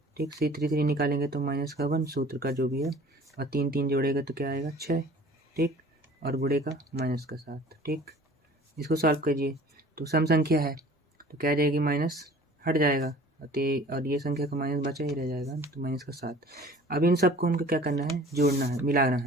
ठीक, 3 निकालेंगे तो माइनस का 1 सूत्र का जो भी है, और 3 जोड़ेगा तो क्या आएगा 6। ठीक, और गुणे का माइनस का 7। ठीक, इसको सॉल्व कीजिए तो सम संख्या है तो क्या आ जाएगी, माइनस हट जाएगा और ये संख्या का माइनस बचा ही रह जाएगा, तो माइनस का 7। अब इन सबको हमको क्या करना है, जोड़ना है, मिलाना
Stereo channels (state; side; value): normal; both; correlation 0.47